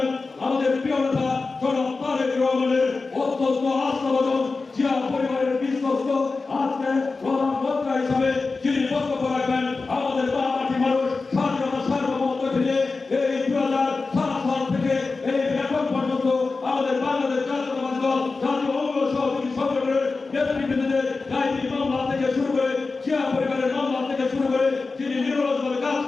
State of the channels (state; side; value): quieter; right; 4.0 dB